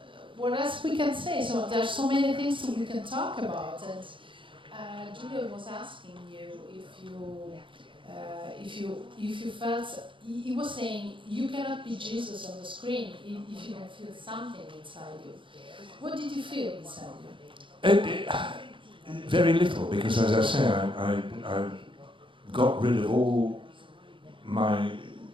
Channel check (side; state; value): left; late; 0.25 ms